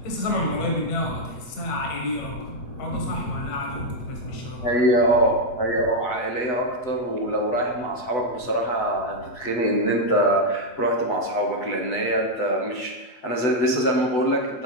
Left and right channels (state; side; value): late; right; 8.1 ms